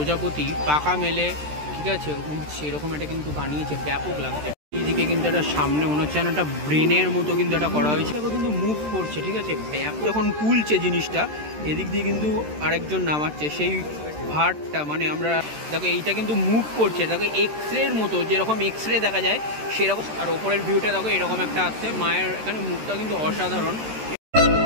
পাকা মেলে, ঠিক আছে, উঠছে, এরকম একটা কিন্তু বানিয়েছে, ব্যাপক লাগছে। এইদিকে কিন্তু একটা সামনে মনে হচ্ছে একটা ব্রেনের মতো কিন্তু এটা করা হয়েছে, কিন্তু মুভ করছে, ঠিক আছে, ব্যাপক যখন তুলছে জিনিসটা, এদিক দিয়ে কিন্তু আরেকজন নামাচ্ছে সেই ভারটা, মানে আমরা দেখো এইটা কিন্তু মুভ করছে, দেখো এক্স রের মতো, যেরকম এক্স রে দেখা যায় সেরকম। আর ওপরের ভিউটা দেখো এরকম একটা আসছে, মায়ের এখানে মুখটা কিন্তু অসাধারণ,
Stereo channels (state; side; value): late; left; 13 ms